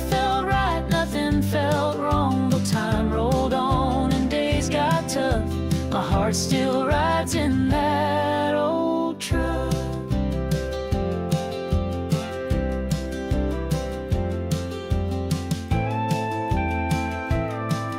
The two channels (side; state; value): both; identical; correlation 1.00